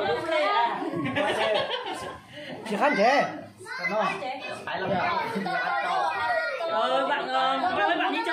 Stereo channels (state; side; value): identical; both; correlation 1.00